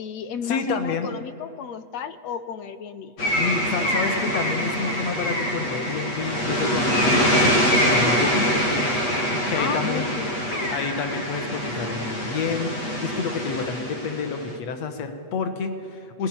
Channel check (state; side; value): late; right; 8.4 ms